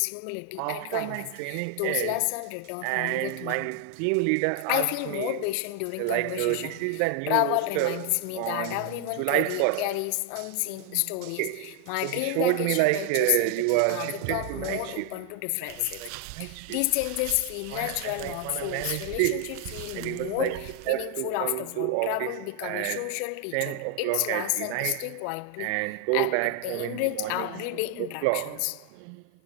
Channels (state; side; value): different; both; correlation 0.00